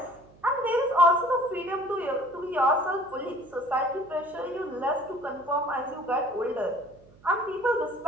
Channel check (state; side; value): noise; right; hum, 26 dB below the sound